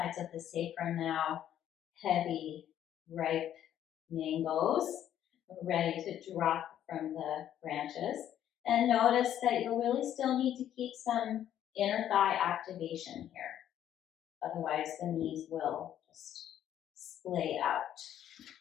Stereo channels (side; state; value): right; quieter; 10.9 dB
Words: of the sacrum now heavy, ripe mangoes, ready to drop from the branches. And notice that you'll really still need to keep some inner thigh activation here. Otherwise, the knees will just splay out.